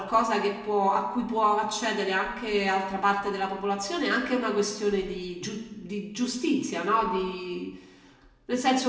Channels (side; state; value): both; identical; correlation 1.00